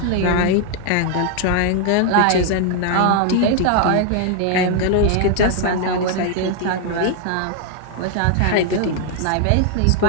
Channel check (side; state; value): both; different; correlation 0.00